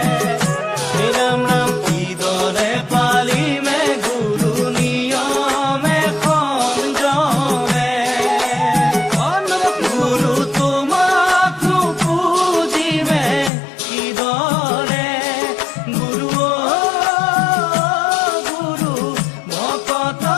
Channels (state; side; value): drops out; right; at 13.5 s